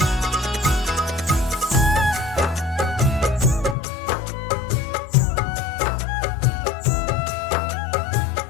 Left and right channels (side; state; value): right; drops out; at 3.8 s